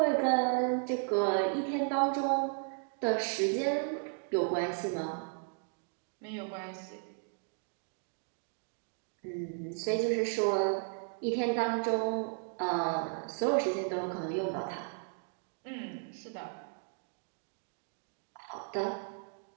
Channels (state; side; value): silent; left; 55 dB below the other